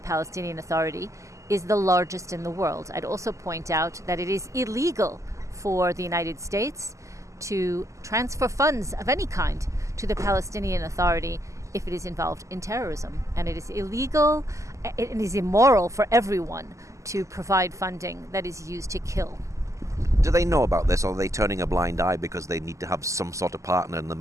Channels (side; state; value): left; late; 0.15 ms